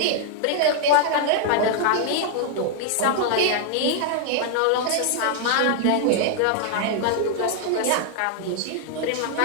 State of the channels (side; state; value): both; different; correlation 0.00